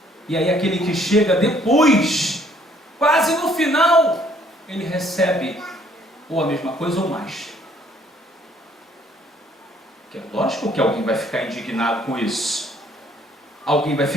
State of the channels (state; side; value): normal; both; correlation 0.63